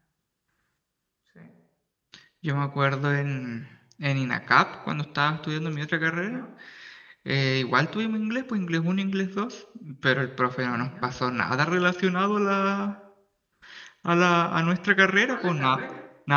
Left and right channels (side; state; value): both; identical; correlation 1.00